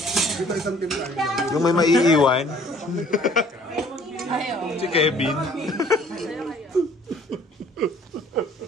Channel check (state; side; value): normal; both; correlation 0.56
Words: Yung may maiiwan. Si Kevin.